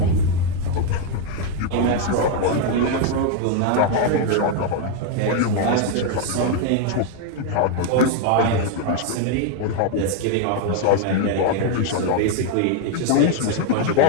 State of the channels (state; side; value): different; both; correlation 0.01